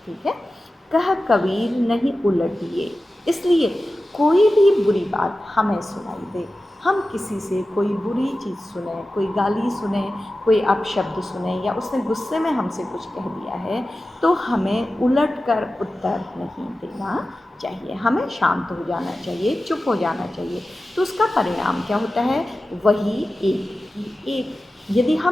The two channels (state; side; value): normal; both; correlation 0.94